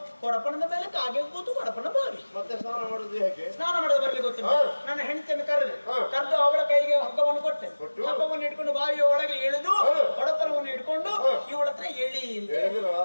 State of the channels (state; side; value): inverted; both; correlation -1.00